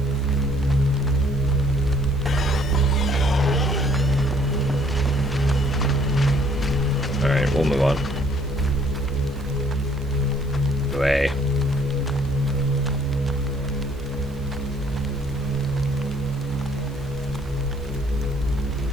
Alright, we'll move on. Away.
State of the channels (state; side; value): noise; right; hiss, 28 dB below the sound